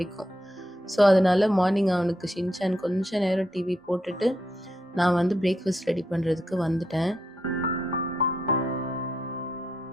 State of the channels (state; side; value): normal; both; correlation 0.81